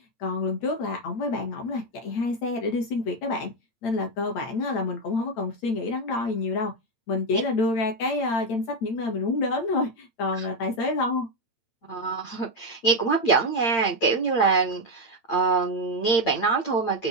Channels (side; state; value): right; late; 8.8 ms